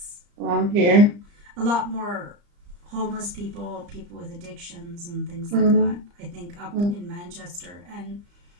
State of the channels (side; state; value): left; late; 34 ms